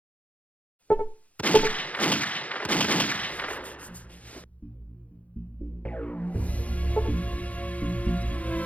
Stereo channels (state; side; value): late; right; 0.067 ms